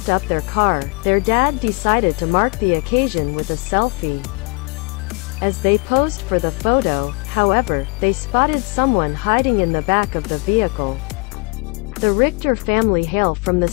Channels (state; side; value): quieter; right; 29.0 dB